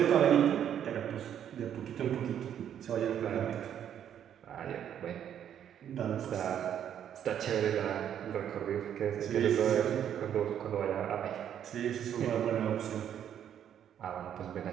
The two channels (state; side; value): quieter; left; 9.6 dB